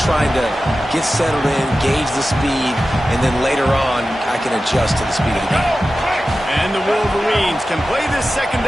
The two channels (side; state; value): both; normal; correlation 0.94